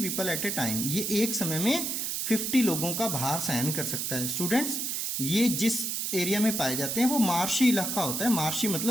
at a time. ये एक समय में 50 लोगों का भार सहन कर सकता है. स्टूडेंट्स ये जिस एरिया में पाए जाते हैं वो मार्शी इलाका होता है. मार्शी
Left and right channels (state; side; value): noise; right; hiss, 1 dB below the sound